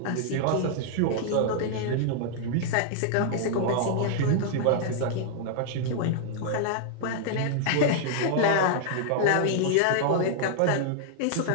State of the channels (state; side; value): different; both; correlation -0.01